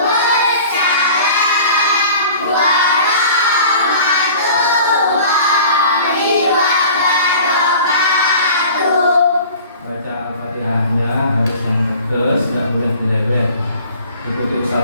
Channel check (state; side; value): inverted; both; correlation -0.45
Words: warahmatullahi wabarakatuh. Baca Al-Fatihahnya harus yang tegas, tidak boleh dilewet. Ikuti